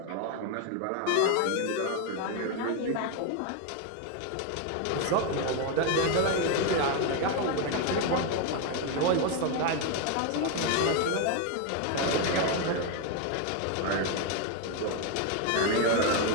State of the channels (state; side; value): different; both; correlation 0.01